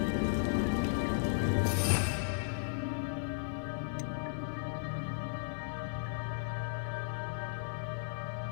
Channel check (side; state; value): right; silent; 54 dB below the other